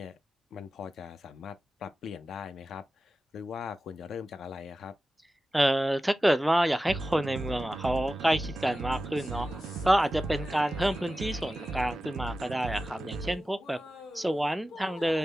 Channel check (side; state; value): both; normal; correlation 0.94